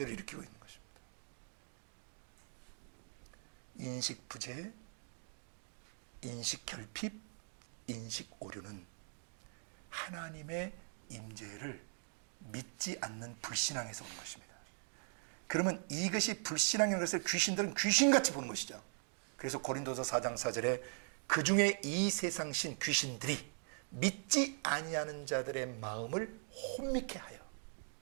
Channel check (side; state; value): left; silent; 51 dB below the other